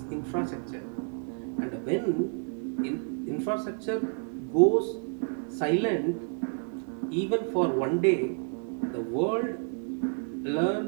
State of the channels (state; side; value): quieter; left; 39.3 dB